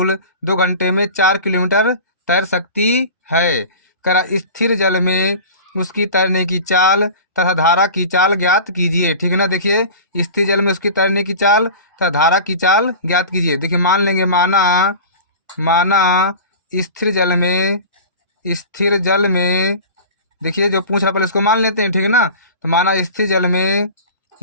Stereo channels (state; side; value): inverted; both; correlation -0.36